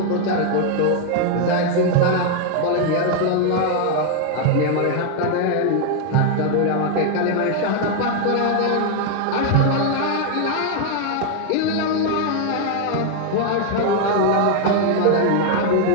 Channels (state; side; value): different; both; correlation 0.00